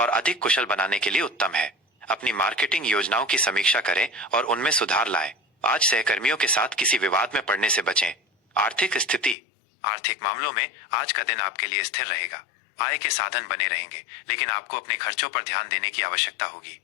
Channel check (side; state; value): right; drops out; at 9.3 s